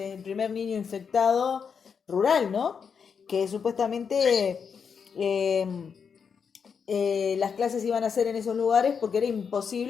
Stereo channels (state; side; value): quieter; right; 6.4 dB